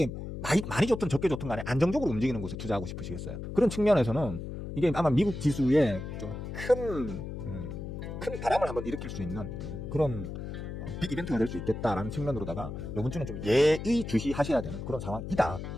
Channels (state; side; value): noise; left; hum, 7 dB below the sound